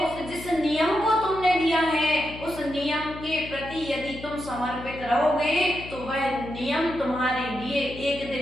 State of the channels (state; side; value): noise; left; hum, 14 dB below the sound